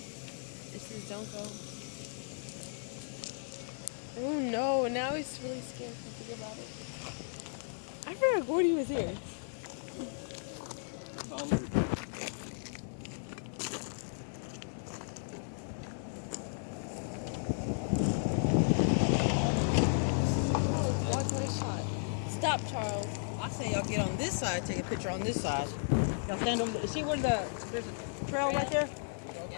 This is don't go. Oh no, now he's really scared to think about it. I forgot Gordy was here. Stop, Charles. I say y'all get on this side, take a picture on this side. Y'all stand over there. See where there's a trail right there?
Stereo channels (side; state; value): right; silent; 55 dB below the other